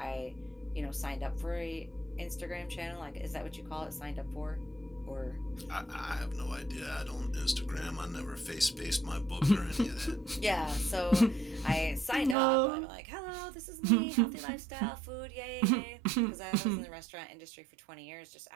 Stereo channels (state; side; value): drops out; left; at 12.4 s